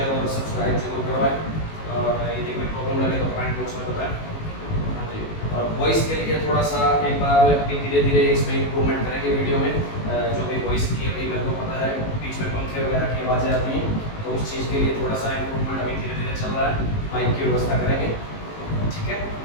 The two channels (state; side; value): late; right; 19 ms